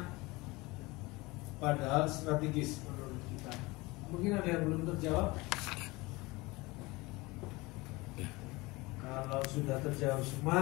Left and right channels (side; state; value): right; quieter; 22.8 dB